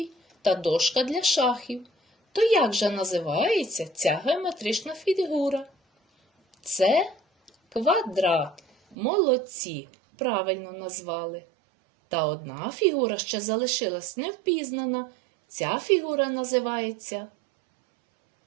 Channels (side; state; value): left; drops out; at 9.0 s